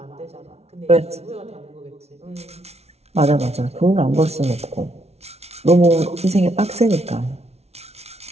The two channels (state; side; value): late; left; 0.31 ms